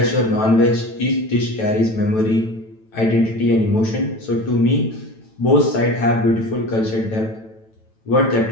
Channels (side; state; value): right; late; 9.1 ms